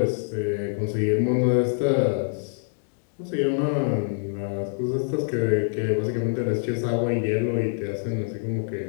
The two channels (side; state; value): right; silent; 61 dB below the other